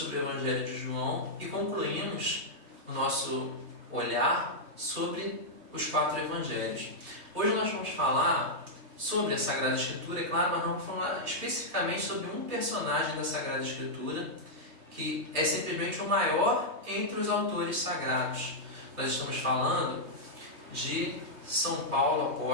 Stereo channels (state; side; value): late; left; 3.1 ms